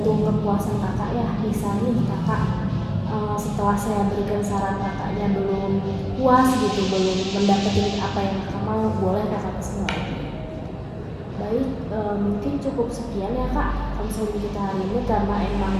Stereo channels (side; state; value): both; identical; correlation 1.00